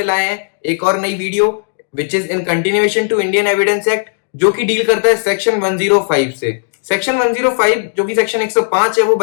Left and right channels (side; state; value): right; silent; 70 dB below the other